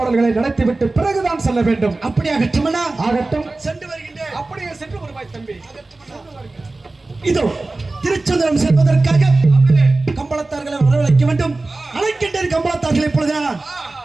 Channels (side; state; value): left; quieter; 3.2 dB